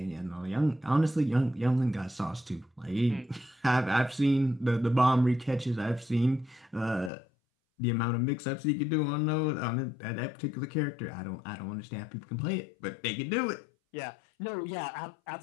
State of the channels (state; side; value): drops out; right; at 7.1 s